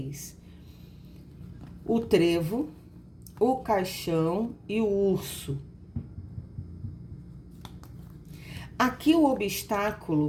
O trevo, o caixão e o urso. Aqui o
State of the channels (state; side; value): identical; both; correlation 1.00